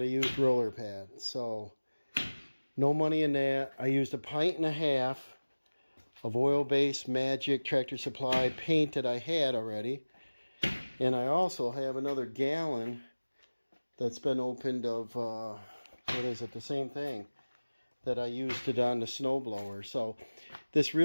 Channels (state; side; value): inverted; both; correlation -1.00